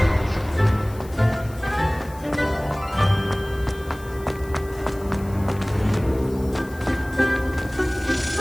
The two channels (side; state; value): left; noise; hiss, 22 dB below the sound